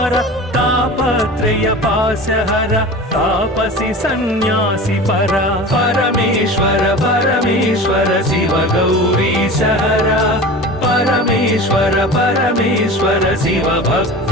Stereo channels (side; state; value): both; normal; correlation 0.35